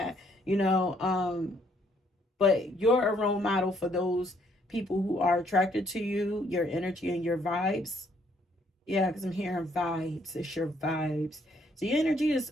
you know. But you're a role model for those people who are attracted to you, your energy and your vibes. Yeah, because I'm hearing vibes. It's your vibes. So your energy is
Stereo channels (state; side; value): normal; both; correlation 0.68